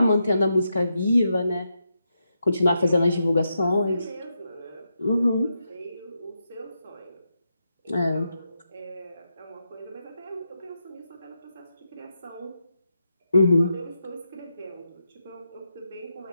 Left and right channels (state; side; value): inverted; both; correlation -0.85